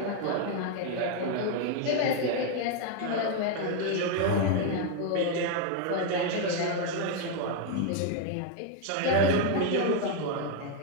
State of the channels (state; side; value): different; both; correlation 0.01